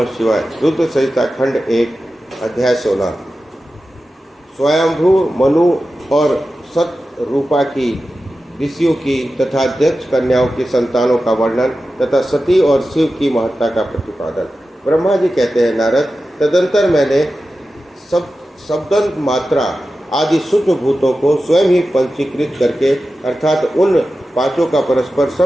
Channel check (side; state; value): both; normal; correlation 0.93